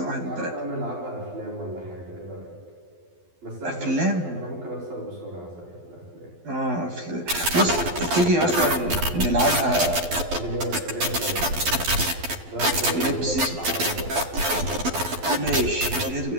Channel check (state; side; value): late; left; 12 ms